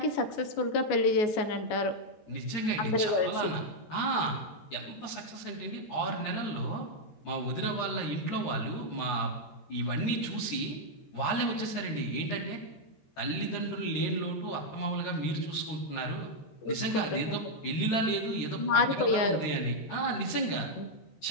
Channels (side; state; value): right; late; 13 ms